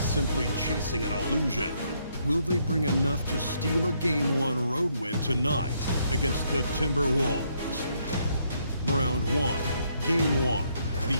chasing an illusion. Will they bring enough to steal a Game 1 road win tonight against the Timberwolves? Round one, Game 1, the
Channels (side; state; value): both; inverted; correlation -0.73